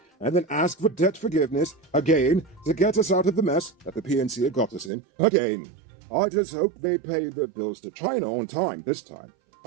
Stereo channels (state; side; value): drops out; left; at 4.9 s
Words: and then ask for debt forgiveness again to get us out of the mess that the PNC had got us in again. I just hope they pay their bills to China on time this time.